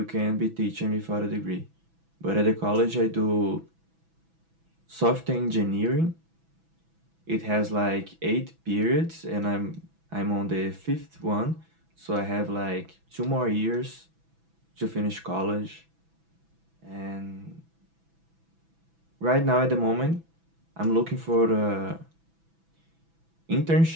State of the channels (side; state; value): left; late; 6.1 ms